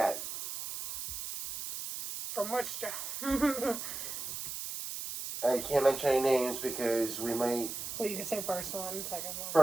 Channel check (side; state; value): right; noise; hiss, 6 dB below the sound